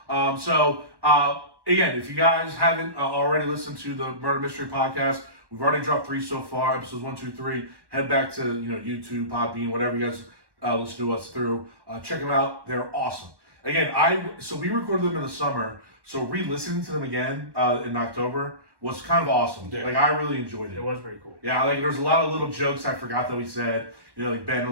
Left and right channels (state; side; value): late; left; 1.1 ms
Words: Again, if you guys haven't already listened to the Murder Mystery Podcast, we've already dropped 3 so far, episodes 1, 2, 3. Head back to YouTube, Podbean, whatever you guys listen to us through. Check them out; they're awesome. Again, we recorded them in the summer, so re-listening to them again in October was kind of awesome. Yeah. Like I really enjoyed it. It was pretty cool. Yeah, like there's a lot of little jokes I forgot that we said. Like Ben